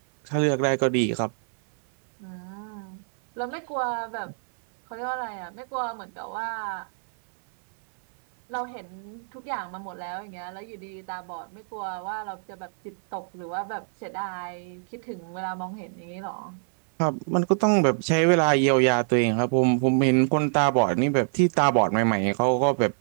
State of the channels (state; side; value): silent; left; 61 dB below the other